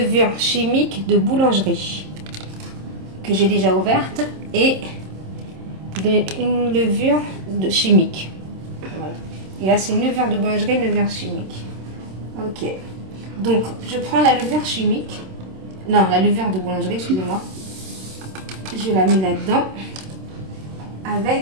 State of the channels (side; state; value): left; late; 26 ms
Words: chimique de boulangerie que j'ai déjà ouverte et une levure chimique. Voilà. Et là, c'est une levure de boulangerie, une levure chimique. Ok. Donc, je prends la levure chimique. Non, la levure de boulangerie, excusez-moi. Je la mets là-dedans